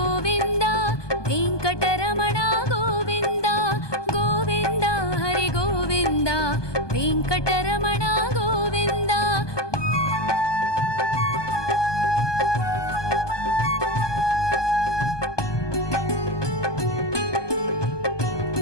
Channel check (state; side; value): late; right; 1.2 ms